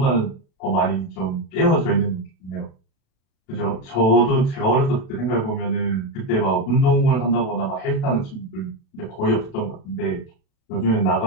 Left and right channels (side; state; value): right; late; 36 ms